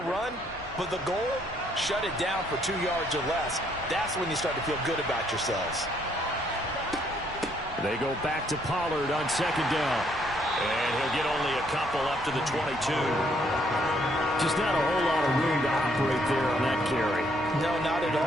run, but the goal, shut it down for 2 yards or less. That's when you start to feel good about yourselves. They go back to Pollard on second down. And he'll get only a couple up to the 22. Just not a whole lot of room to operate there on that carry. No, not at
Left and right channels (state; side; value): normal; both; correlation 0.69